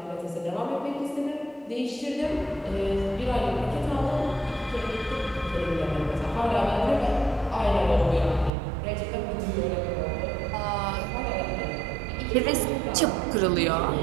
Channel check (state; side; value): drops out; left; at 8.5 s